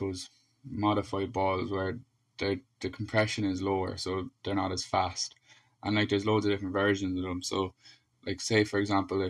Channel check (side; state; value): both; identical; correlation 1.00